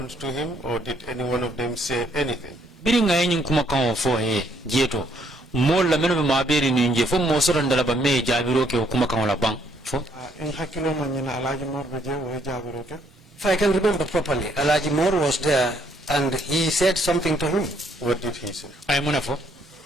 to him, or did any one of them say anything? Biringa yenyin kuma kan fo jeto mol la meno ma beri ni nje fo mo soron dala ba me jabiro ke kuma kan la bang fo. In hakilo manyina alaji morbe je wo jabiro ke. If I can remember properly, Alaji Moore was there and he said something to him. What did he say? Ay muna fo.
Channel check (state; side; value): normal; both; correlation 0.69